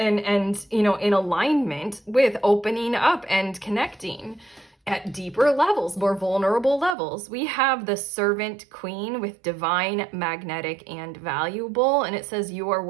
and you know, in alignment with opening up and connecting at deeper levels, more vulnerable levels. We have the Servant Queen with Divine, Magnetic, and Valuable, and it says you are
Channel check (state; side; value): drops out; left; at 7.0 s